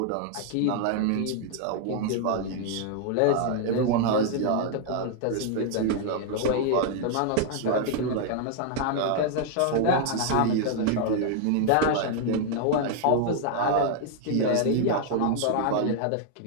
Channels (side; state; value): both; different; correlation 0.00